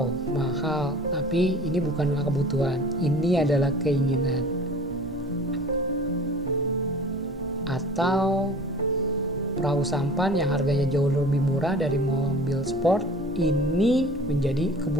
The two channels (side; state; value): both; normal; correlation 0.43